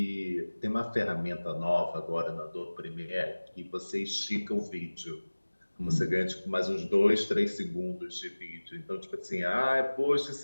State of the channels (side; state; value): both; inverted; correlation -1.00